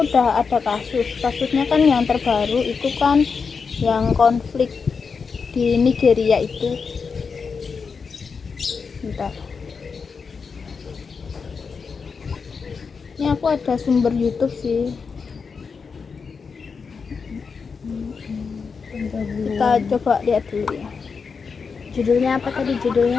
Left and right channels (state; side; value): quieter; right; 5.4 dB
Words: udah ada kasusnya kan yang terbaru itu kan yang konflik di Nigeria itu. Bentar. Ini aku ada sumber YouTube sih. Kita coba lihat dulu ya. Judulnya apa tadi